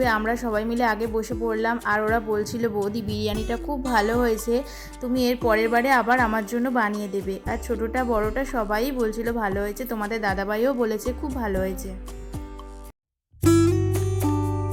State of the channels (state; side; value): identical; both; correlation 1.00